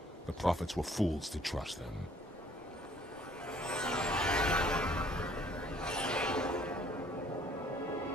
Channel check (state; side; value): normal; both; correlation 0.59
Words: The prophets were fools to trust them.